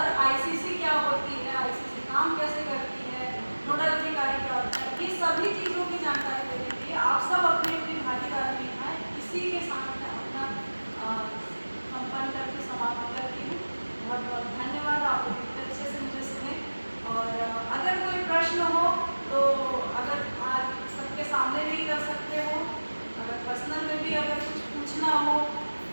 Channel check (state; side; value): inverted; both; correlation -1.00